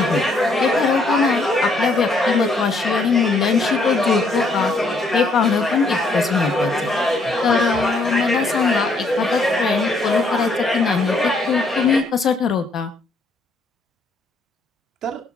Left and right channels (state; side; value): quieter; right; 3.1 dB